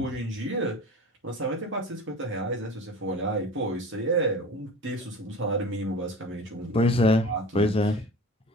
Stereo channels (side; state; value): both; normal; correlation 0.37